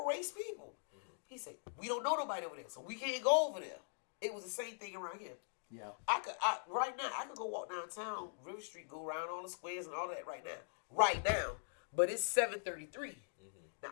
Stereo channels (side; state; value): right; silent; digital silence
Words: race people. He said, "We don't know nobody over there, so we can't go over there." It was the same thing around here. Yeah. Right now, I could go walk downtown, River Street, go around all the squares and all that right now. But it's 7:33. Now,